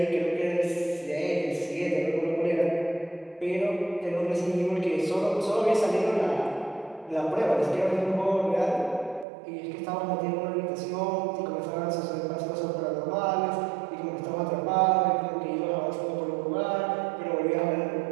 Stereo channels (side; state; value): left; drops out; at 9.2 s